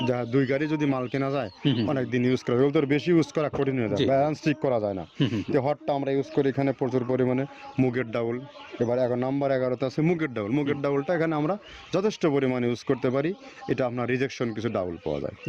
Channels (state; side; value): identical; both; correlation 1.00